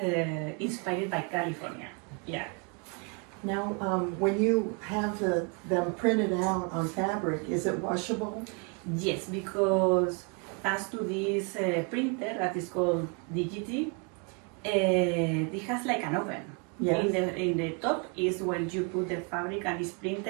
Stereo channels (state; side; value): quieter; left; 34.2 dB